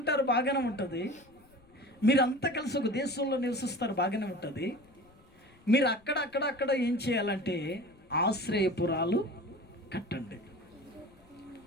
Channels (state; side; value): noise; left; rumble, 28 dB below the sound